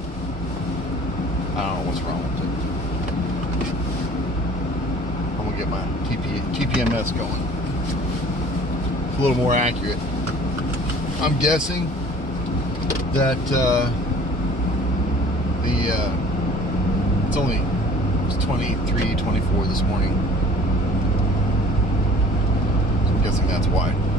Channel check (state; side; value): normal; both; correlation 0.49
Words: I don't know what's wrong with it. I'm gonna get my TPMS going. It's a little more accurate. I'm guessing that it's 23, 24 this morning. So I'm guessing that's why.